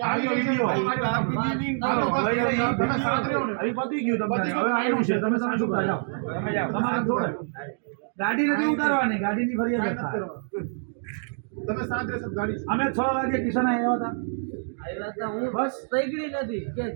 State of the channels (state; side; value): silent; left; digital silence